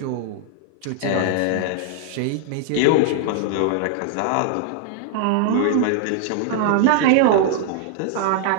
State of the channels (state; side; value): different; both; correlation 0.00